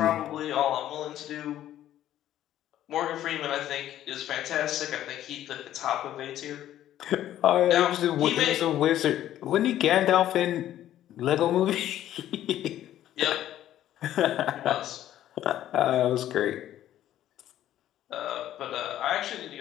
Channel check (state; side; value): quieter; right; 12.3 dB